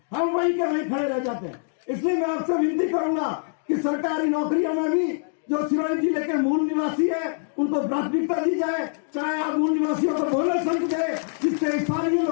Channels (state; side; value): silent; right; 62 dB below the other